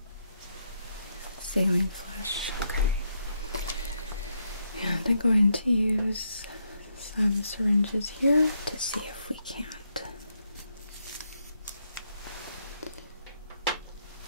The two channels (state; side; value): inverted; both; correlation -0.78